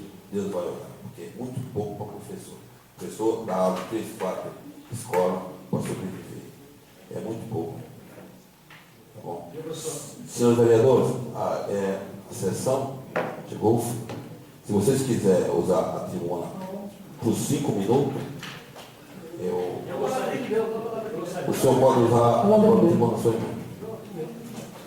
Deus vai olhar, porque é muito pouco para o professor. O professor dá aula 3, 4 escolas para sobreviver. É muito pouco. Tá bom? Senhores vereadores, a sessão chegou ao fim. Se vocês quiserem usar a tribuna por 5 minutos, o senhor pode usar a tribuna na sua mão.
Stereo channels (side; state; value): both; identical; correlation 1.00